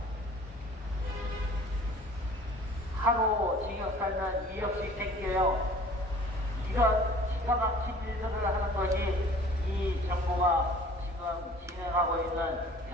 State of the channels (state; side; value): normal; both; correlation 0.49